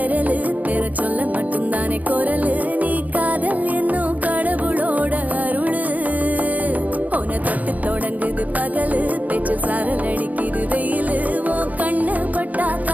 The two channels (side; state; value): left; late; 0.077 ms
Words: பெற சொல்ல மட்டும்தானே குரலு நீ காதல் என்னும் கடவுளோட அருளு உன தொட்டு தொடங்குது பகலு பேச்சில் சாரல் அடிக்குது வெயிலு ஓ கண்ணு பட்டா